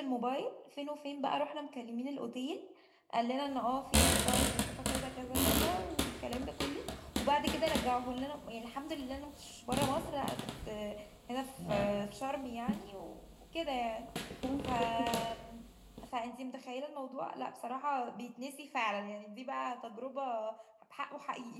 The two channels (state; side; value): identical; both; correlation 1.00